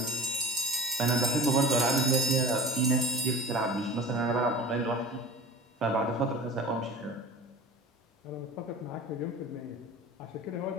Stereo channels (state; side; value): normal; both; correlation 0.38